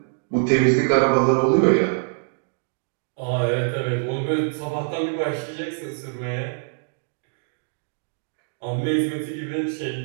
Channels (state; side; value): silent; left; digital silence